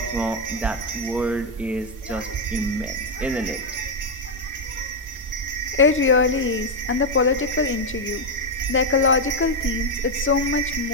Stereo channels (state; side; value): normal; both; correlation 0.02